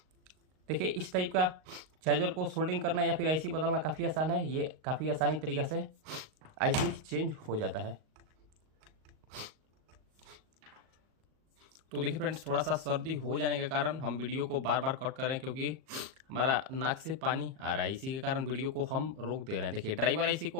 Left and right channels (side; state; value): left; late; 38 ms